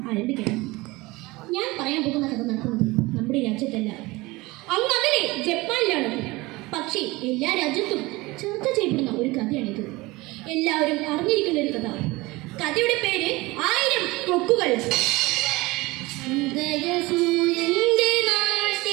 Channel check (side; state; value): left; quieter; 21.8 dB